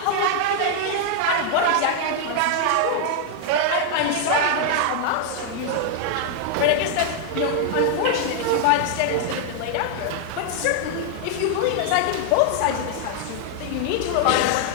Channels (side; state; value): both; different; correlation 0.00